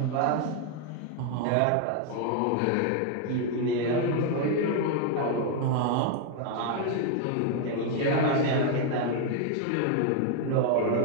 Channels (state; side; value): different; both; correlation 0.00